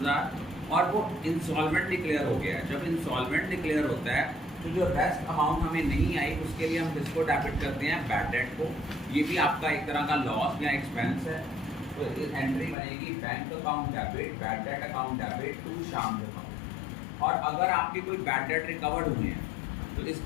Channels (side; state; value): right; drops out; at 12.8 s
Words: और वो इंसॉल्वेंट डिक्लेयर हो गया है। जब इंसॉल्वेंट डिक्लेयर होता है तो जो रेस्ट अमाउंट हमें नहीं आई उसके लिए हम किसको डेबिट करते हैं, बैड डेट को। ये भी आपका एक तरह का लॉस या एक्सपेंस है। तो इस एंट्री बनेगी bank account debit bad debt account debit to Sham account. और अगर आपके कोई बैड डेट रिकवर्ड हुए हैं तो